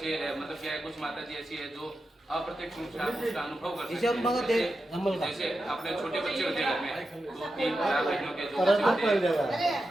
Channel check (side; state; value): both; normal; correlation 0.90